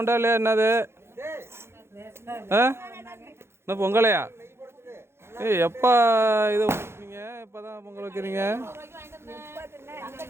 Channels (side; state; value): left; late; 0.12 ms